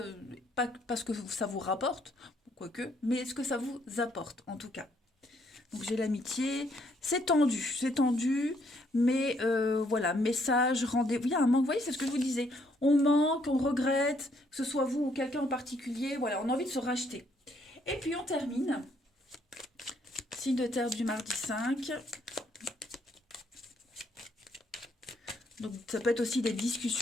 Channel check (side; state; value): both; normal; correlation 0.69